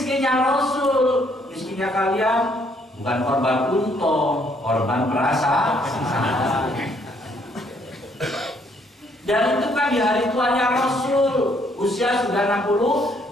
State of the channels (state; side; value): normal; both; correlation 0.68